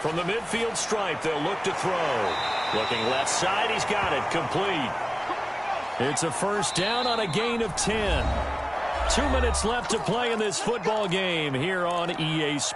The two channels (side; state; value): both; identical; correlation 1.00